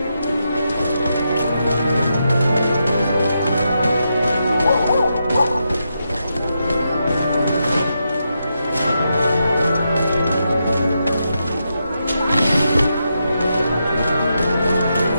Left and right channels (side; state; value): both; inverted; correlation -0.84